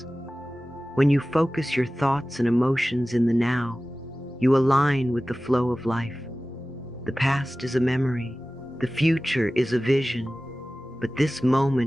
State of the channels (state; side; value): normal; both; correlation 0.96